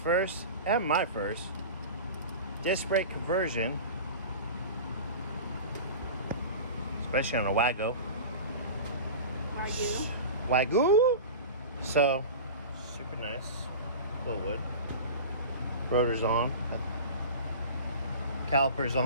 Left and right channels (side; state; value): both; inverted; correlation -0.33